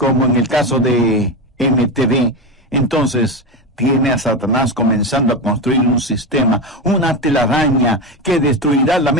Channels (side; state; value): both; normal; correlation 0.17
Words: en el caso de MTV, entonces tiene a Satanás comenzando a construir un sistema, una telaraña que destruirá la